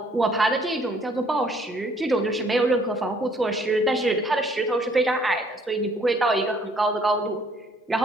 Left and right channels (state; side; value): normal; both; correlation 0.62